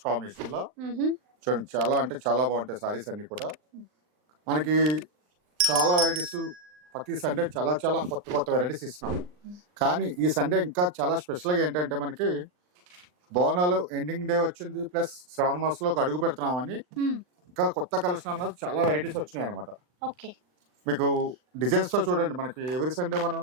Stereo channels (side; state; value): left; late; 39 ms